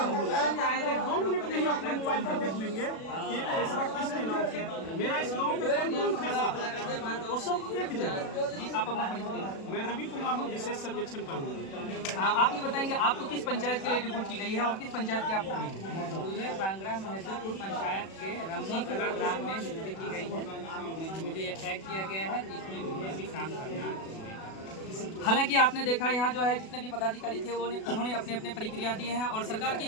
हो जाए तो 2 मिनट में ही अपने मोबाइल पर देख लेंगे कि खेसरा किसके नाम से है। मेरा इस गांव में कौन खेसरा है वो सब एक जगह। जी आप अपना परिचय दें। मैं रवि कुमार हूँ, विशेष सर्वेक्षण कानून। आप ये बताएंगे आपको किस पंचायत के लिए रिपोर्ट की गई है और किस पंचायत के आप मुझे बंगरा महदीपुर पंचायत के रमनी कला ग्राम में नियुक्ति की गई है। मुझे ये टैग किया गया है जिसमें मुझे अभी काम करना है। हालांकि आपने देखा यहाँ जो है जितने भी पदाधिकारी थे उन्होंने अपने अपने प्रक्रिया दिए हैं और सरकार की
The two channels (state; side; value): late; right; 37 ms